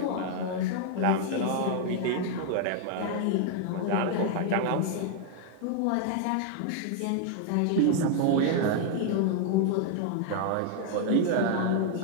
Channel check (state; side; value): different; both; correlation 0.00